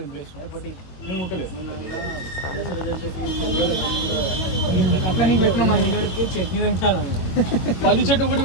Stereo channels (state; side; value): late; right; 22 ms